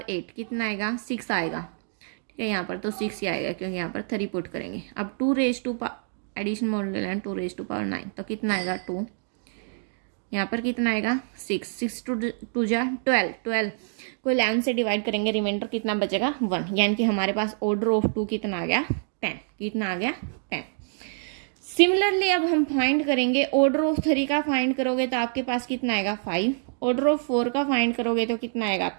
8 कितना आएगा, 6 आएगा। ठीक है, यहाँ पर तो 6 ही आएगा क्योंकि यहाँ पर 3 पुट करेंगे। अब 2 raise to addition modulo 11 2 raise to power 9 तो कितना आएगा, 2। यहाँ पर कितना आएगा, 6 2 जा 12, 12 को 11 से डिवाइड करेंगे, रिमाइंडर कितना बचेगा, 1। यानी कि हमारे पास ऑर्डर ऑफ 2 कितना आ गया, 10। कितना आ गया, 10। सिमिलरली अब हम फाइंड करेंगे ऑर्डर ऑफ 3 का फाइंड करोगे तो आपके पास कितना आएगा, 5। ऑर्डर ऑफ 4 का फाइंड करोगे तो कितना आएगा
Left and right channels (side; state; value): left; silent; digital silence